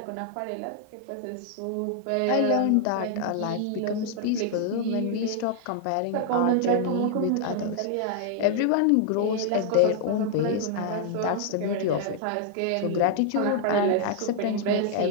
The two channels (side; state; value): both; different; correlation 0.00